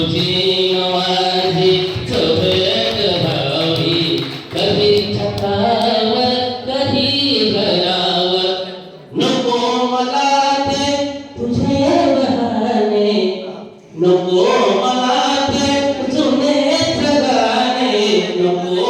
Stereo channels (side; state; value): both; identical; correlation 1.00